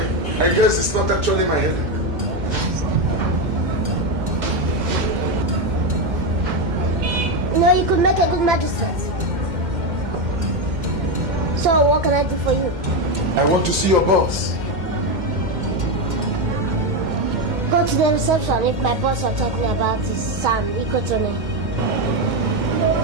I guess it's not actually my headache. No, you could make a good magistrate. So what can I do for you? I want to see your boss. Go to the reception if my boss are talking about his son, Ikotomi.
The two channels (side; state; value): left; late; 2.1 ms